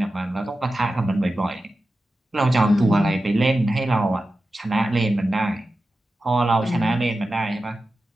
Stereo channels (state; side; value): normal; both; correlation 0.93